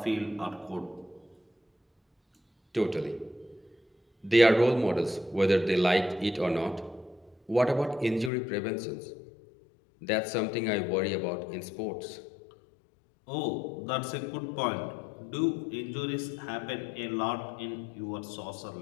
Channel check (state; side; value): drops out; right; at 8.3 s